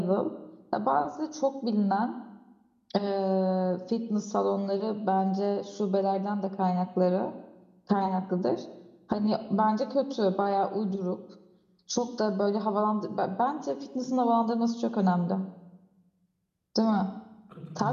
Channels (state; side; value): identical; both; correlation 1.00